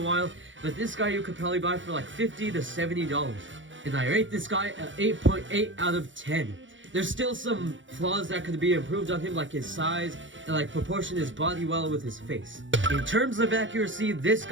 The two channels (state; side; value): late; left; 0.56 ms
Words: while, but this guy you could probably buy for like $50 to $70. And I rate this guy at 8.8 out of 10. There's still some flaws that could be improved on him, like his size and like proportion his body well with his face. In terms of accuracy, this